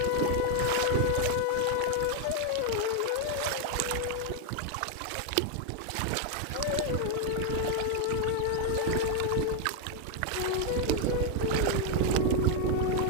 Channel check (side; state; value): both; different; correlation 0.01